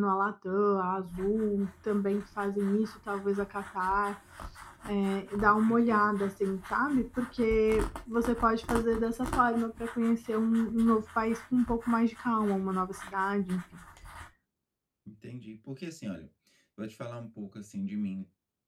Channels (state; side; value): identical; both; correlation 1.00